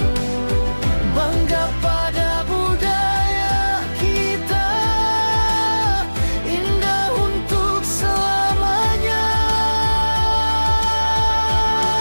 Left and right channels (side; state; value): both; inverted; correlation -1.00